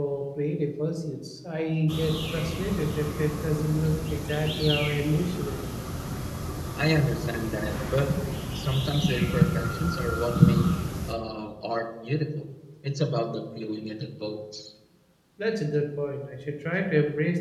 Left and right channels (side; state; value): both; identical; correlation 1.00